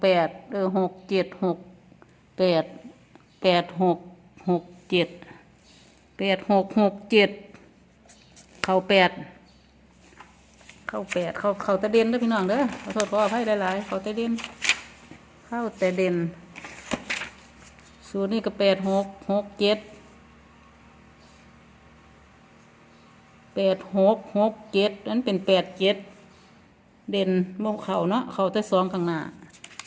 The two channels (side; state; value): both; identical; correlation 1.00